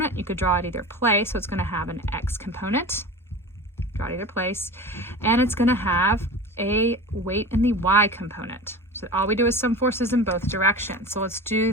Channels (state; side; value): normal; both; correlation 0.33